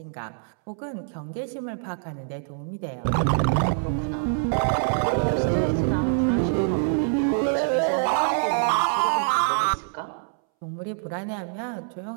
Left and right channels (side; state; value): left; silent; 62 dB below the other